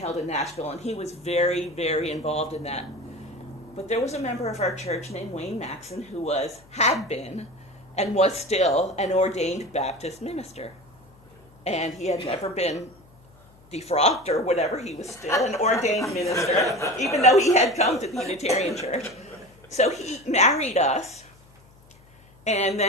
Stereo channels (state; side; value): noise; left; hum, 27 dB below the sound